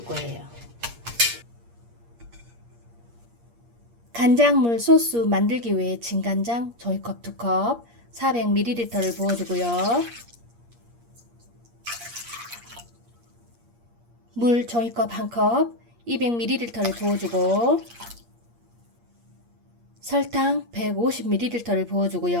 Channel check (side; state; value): left; late; 8.6 ms